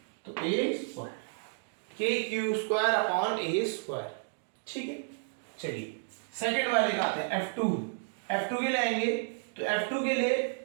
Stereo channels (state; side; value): silent; left; digital silence